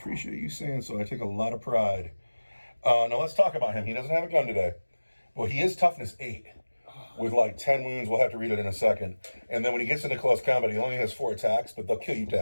you saying so. I take a lot of pride. Now let's talk about him. He doesn't have a gun today. Well, he is toughness 8 with like 10 wounds. We'll have to read it in a second. And then when he gets into close combat, he only has 4 attacks, but they'll kill you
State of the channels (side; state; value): both; inverted; correlation -1.00